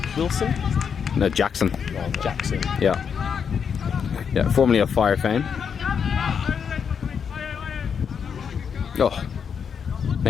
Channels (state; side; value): quieter; right; 6.9 dB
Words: Wilson? No, Jackson. Oh, Jackson. Yeah, formerly of Fire fame. Oh,